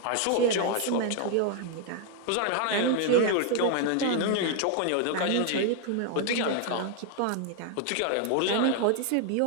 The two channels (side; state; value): both; different; correlation 0.01